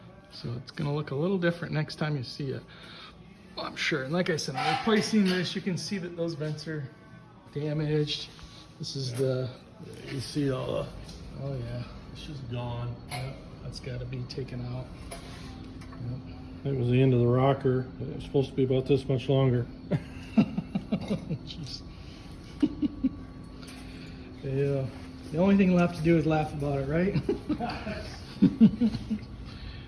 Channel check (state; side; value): identical; both; correlation 1.00